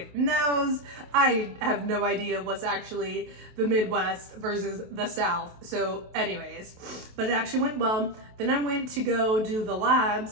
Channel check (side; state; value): left; late; 28 ms